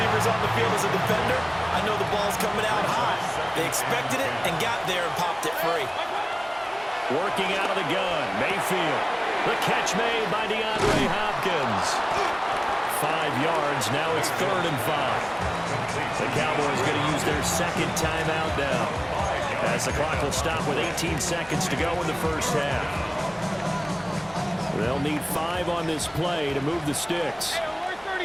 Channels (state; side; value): identical; both; correlation 1.00